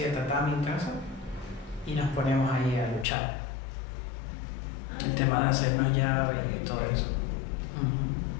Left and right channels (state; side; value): drops out; right; at 3.1 s